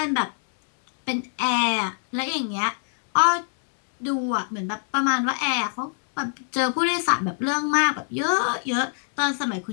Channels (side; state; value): right; silent; digital silence